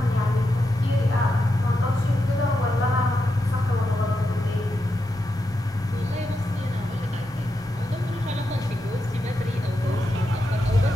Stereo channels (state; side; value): normal; both; correlation 0.86